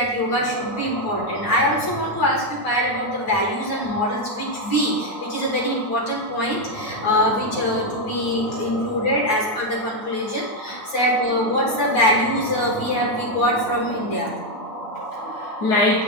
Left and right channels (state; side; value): late; right; 9.2 ms